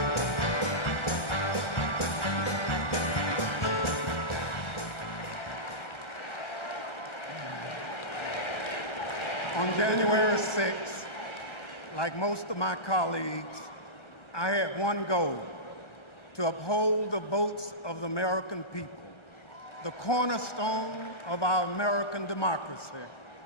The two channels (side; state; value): right; late; 1.3 ms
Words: On January 6th, like most of my colleagues, I had one goal: to uphold the votes of the American people, the cornerstone of our American democracy.